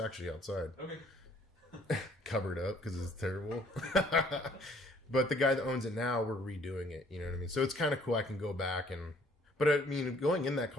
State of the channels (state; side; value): normal; both; correlation 0.60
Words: actually outside. Okay. Covered up because it's terrible. But the guy that owns it now, we're redoing it. You know what I mean? So it's kind of cool. I can go back and. But I mean, going in that